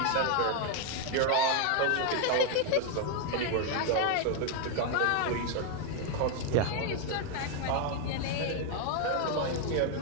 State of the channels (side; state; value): both; different; correlation 0.01